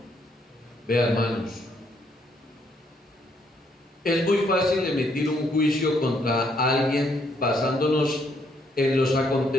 Vean, hermanos, es muy fácil emitir un juicio contra alguien basándonos en los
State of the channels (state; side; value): normal; both; correlation 0.71